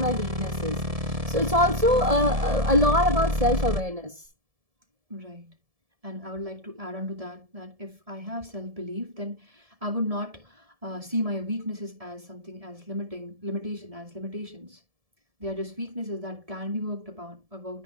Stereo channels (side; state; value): left; late; 1.7 ms